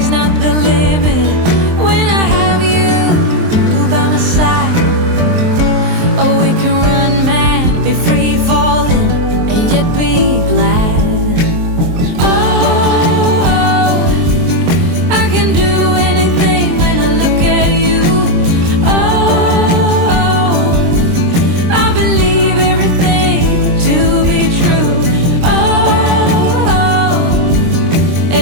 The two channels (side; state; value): left; late; 23 ms